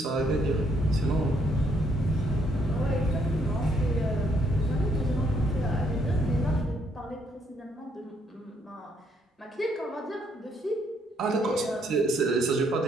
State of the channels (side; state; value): both; normal; correlation 0.71